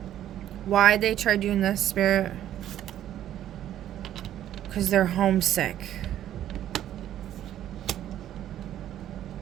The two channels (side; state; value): left; quieter; 11.7 dB